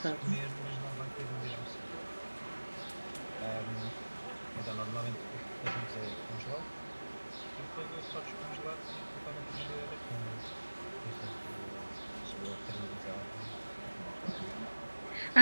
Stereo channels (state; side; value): inverted; both; correlation -1.00